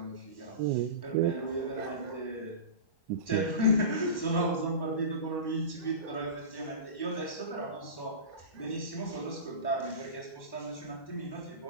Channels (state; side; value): late; right; 1.1 ms